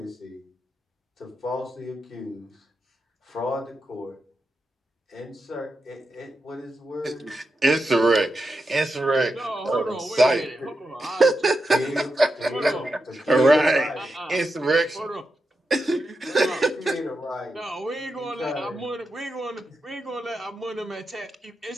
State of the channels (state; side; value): normal; both; correlation 0.87